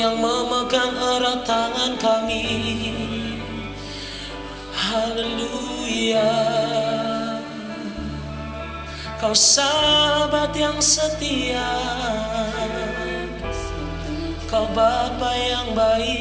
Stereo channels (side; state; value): both; identical; correlation 1.00